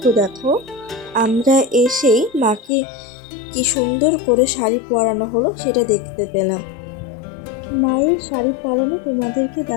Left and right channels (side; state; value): right; drops out; at 2.7 s